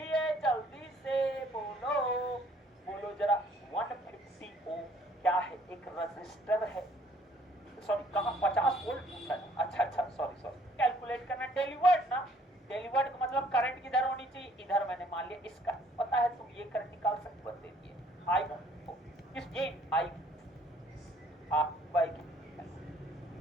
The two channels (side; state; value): both; normal; correlation 0.60